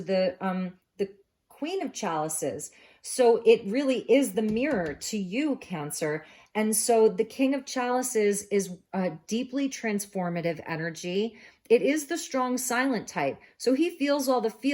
the Queen of Chalices. So it really is the mirror to you, Cancer. And so the King of Chalices is a deeply transformative energy. It is the strong silent type. So he feels all the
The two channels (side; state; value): both; identical; correlation 1.00